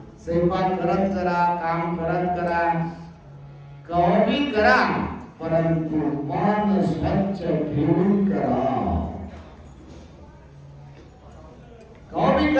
स्वयंपाक करत करा, काम करत करा, कधी करा, परंतु मन स्वच्छ ठेवून करा। कधी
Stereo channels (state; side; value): identical; both; correlation 1.00